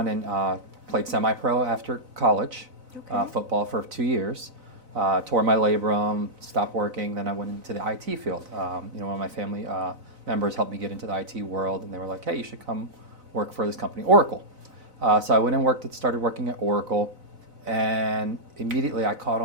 and played semi-pro after college, football for 2 years, tore my labrum, stopped working, then I went into the IT field. One of my family members helped me get into the IT world, and they were like, hey, you should come work for this company, Oracle. So I went and started working at Oracle, and immediately I caught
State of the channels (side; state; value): left; late; 4.0 ms